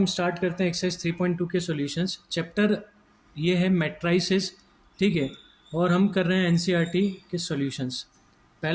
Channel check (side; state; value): both; identical; correlation 1.00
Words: स्टार्ट करते हैं एक्सरसाइज 3.2 के सॉल्यूशंस। चैप्टर ये है मैट्राइसेस। ठीक है, और हम कर रहे हैं एनसीईआरटी के सॉल्यूशंस।